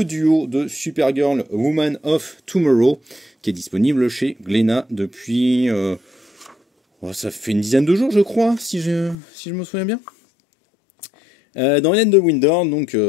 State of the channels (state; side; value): drops out; right; at 9.2 s